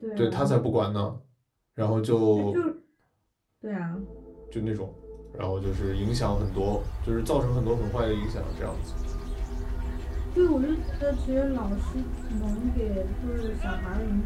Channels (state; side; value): identical; both; correlation 1.00